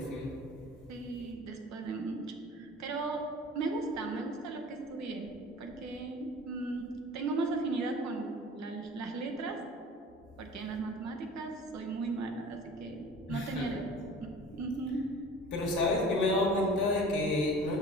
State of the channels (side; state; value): both; normal; correlation 0.43